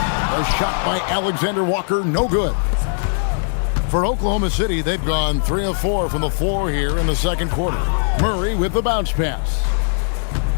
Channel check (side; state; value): right; silent; digital silence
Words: A shot by Alexander Walker, no good. For Oklahoma City, they've gone 3 of 4 from the floor here in the second quarter. Murray with the bounce pass.